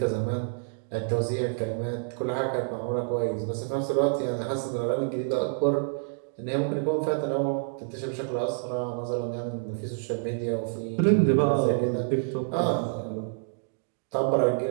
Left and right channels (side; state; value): left; silent; digital silence